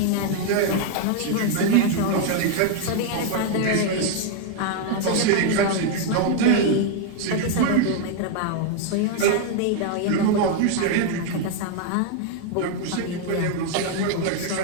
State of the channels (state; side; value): different; both; correlation 0.00